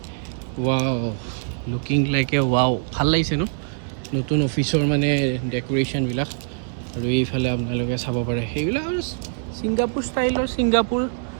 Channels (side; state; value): left; silent; 62 dB below the other